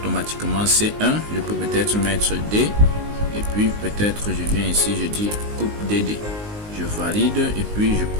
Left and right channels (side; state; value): left; late; 19 ms